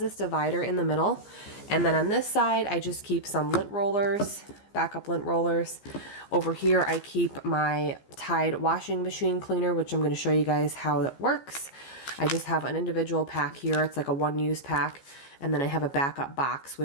divider in the middle, and then on this side I just keep some lint rollers, backup lint rollers. Over here I keep my Tide washing machine cleaner, which I'm going to show you guys how that works. I just have an individual pack here, it's like a one-use pack, and then I have a backup box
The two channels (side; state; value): right; late; 15 ms